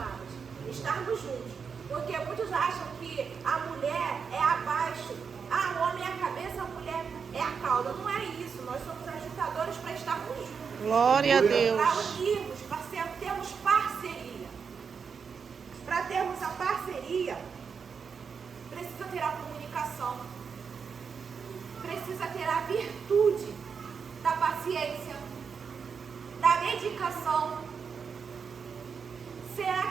Estarmos juntos. Porque muitos acham que a mulher é abaixo. Ah, o homem é a cabeça, a mulher é a cauda. Não é isso. Nós somos ajuntadores para estarmos juntos. Glória a Deus. Para unirmos, para termos parceria. Para termos a parceria, precisa ter a comunicação. Precisa ter a virtude da paciência, da dedicação. Será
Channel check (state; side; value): quieter; left; 6.1 dB